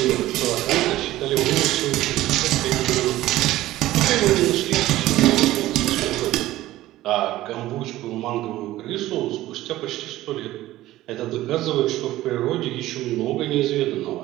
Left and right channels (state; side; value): quieter; left; 15.8 dB